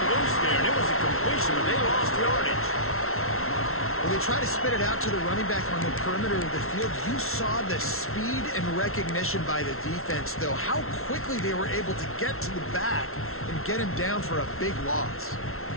loose there, and it was a completion, but they lost yardage. When they try to spit it out to the running back on the perimeter of the field, you saw the speed and recognition by the defense, though, how quickly they were able to get to the back and get him down for a big loss.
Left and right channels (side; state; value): right; late; 0.62 ms